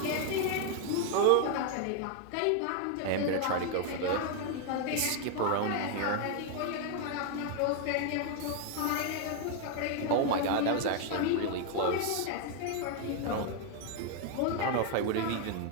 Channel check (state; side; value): different; both; correlation 0.01